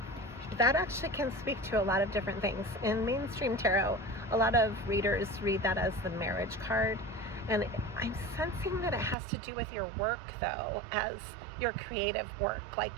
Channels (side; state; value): left; drops out; at 9.2 s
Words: That actually can speak to a lot of different things. In mainstream tarot, a lot of readers read that as the marriage card, and I'm sensing that it has to do with your work, though, as your creative work, like